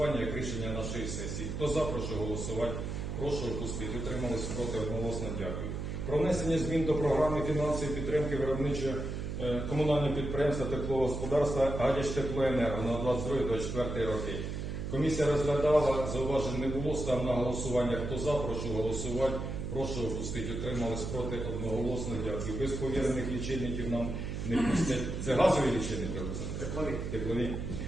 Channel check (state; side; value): noise; right; hum, 4 dB below the sound